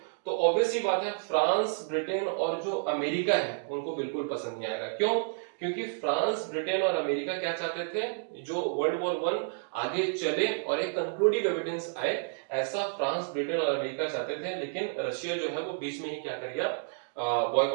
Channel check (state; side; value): silent; left; digital silence